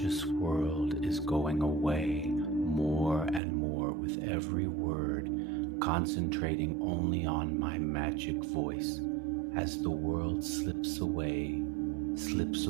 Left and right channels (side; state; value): left; drops out; at 3.4 s